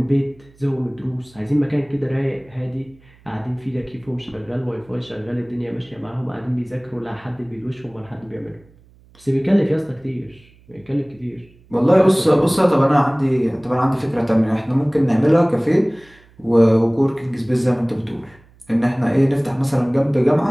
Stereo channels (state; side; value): noise; right; hum, 28 dB below the sound